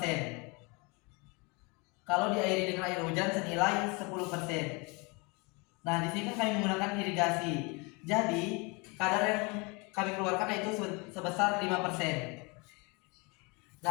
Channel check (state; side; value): quieter; right; 29.0 dB